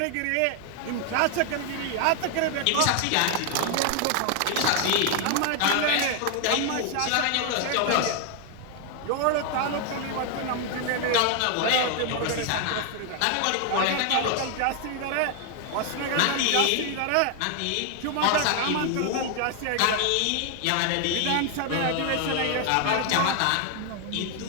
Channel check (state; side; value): different; both; correlation 0.00